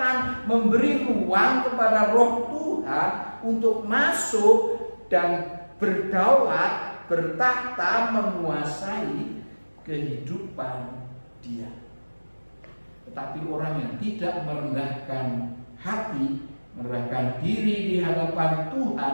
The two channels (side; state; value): both; inverted; correlation -1.00